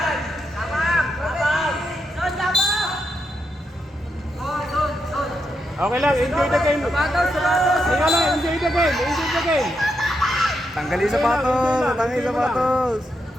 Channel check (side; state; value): both; normal; correlation 0.83